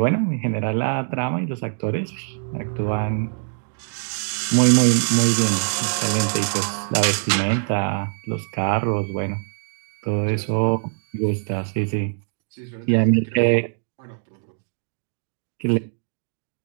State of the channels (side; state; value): left; silent; digital silence